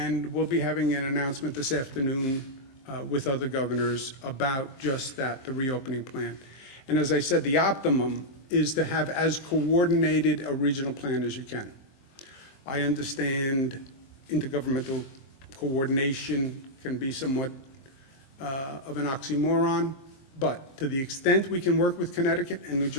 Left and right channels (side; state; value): right; late; 23 ms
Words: we'll be having an announcement this afternoon with other governors about just that, the reopening plan. And as I said, the optimum is to have as coordinated a regional plan as you can. I understand intergovernmental coordination can be somewhat of an oxymoron, but to the extent we can work with Connecticut and New